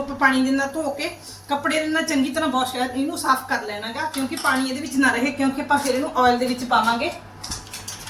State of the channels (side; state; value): both; identical; correlation 1.00